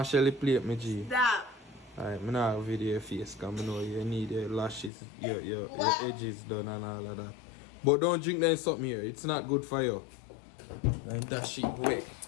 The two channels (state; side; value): drops out; right; at 4.9 s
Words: Shelly plate me G. Stop. Alright, I'm not video your face because I know you need your lashes, your edges done and all of that. But don't drink that something here. It's not good for you. And that shit wet.